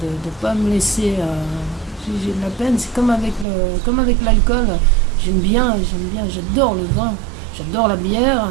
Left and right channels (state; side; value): drops out; left; at 3.5 s